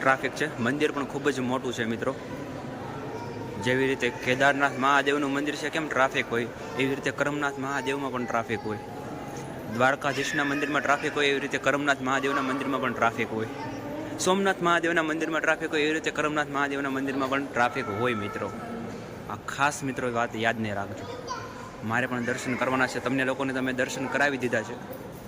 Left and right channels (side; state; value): both; identical; correlation 1.00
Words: છે. મંદિર પણ ખૂબ જ મોટું છે મિત્રો. જેવી રીતે કેદારનાથ મહાદેવનું મંદિર છે કેમ ટ્રાફિક હોય, એવી રીતે કરમનાથ મહાદેવમાં પણ ટ્રાફિક હોય. દ્વારકાધીશના મંદિરમાં ટ્રાફિક હોય, એવી રીતે કરમનાથ મહાદેવના મંદિરમાં પણ ટ્રાફિક હોય. સોમનાથ મહાદેવના મંદિરમાં ટ્રાફિક હોય, એવી રીતે કરમનાથ મહાદેવના મંદિરમાં પણ ટ્રાફિક હોય મિત્રો. આ ખાસ મિત્રો વાત યાદ નહીં રાખજો. મારે પણ દર્શન કરવાના છે. તમને લોકોને તમે દર્શન કરાવી દીધા છે,